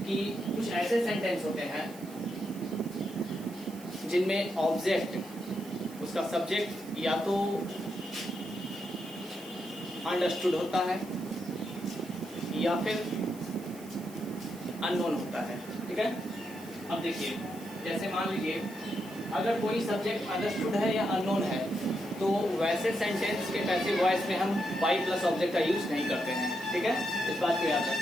कि कुछ ऐसे सेंटेंस होते हैं जिनमें ऑब्जेक्ट, उसका सब्जेक्ट या तो अंडरस्टूड होता है या फिर अननोन होता है। ठीक है, अब देखिए, जैसे मान लीजिए अगर कोई सब्जेक्ट अंडरस्टूड है या अननोन है तो वैसे सेंटेंस के पैसिव वॉइस में हम बाई प्लस ऑब्जेक्ट का यूज नहीं करते हैं। ठीक है, इस बात को याद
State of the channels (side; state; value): right; noise; hiss, 19 dB below the sound